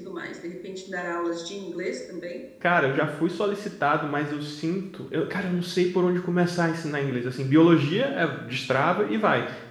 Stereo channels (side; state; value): both; identical; correlation 1.00